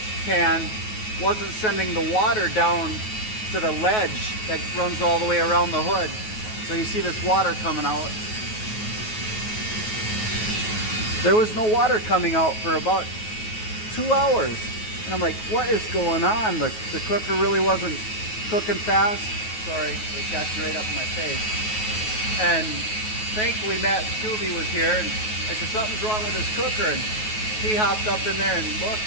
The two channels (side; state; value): right; late; 9.3 ms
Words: pan wasn't sending the water down to the ledge that runs all the way around the hood. So you see this water coming out. There was no water coming out for about 2 hours. And I'm like, what is going on? The cooker really wasn't cooking fast. Sorry, it got you right up in my face. And thankfully Matt Scooby was here, and I said, something's wrong with this cooker. And he hopped up in there and